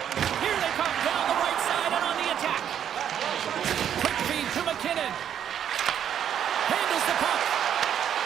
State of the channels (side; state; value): left; quieter; 9.4 dB